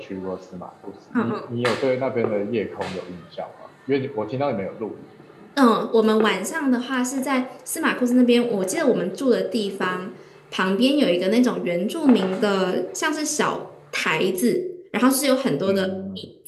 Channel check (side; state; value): both; identical; correlation 1.00